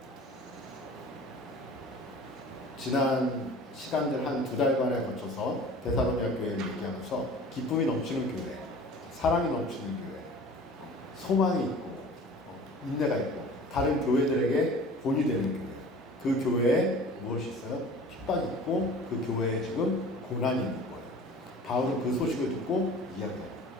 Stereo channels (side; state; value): both; normal; correlation 0.43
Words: 지난 시간들 한 2달간에 거쳐서 데살로니가 교회를 얘기하면서 기쁨이 넘치는 교회, 사랑이 넘치는 교회, 소망이 있고 인내가 있고 다른 교회들에게 본이 되는 교회, 그 교회에 무엇이 있어요? 핍박이 있고 그 교회에 지금 고난이 있는 거예요. 바울은 그 소식을 듣고 이야기해요.